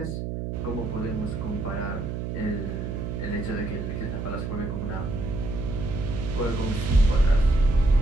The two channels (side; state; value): right; noise; hum, 4 dB below the sound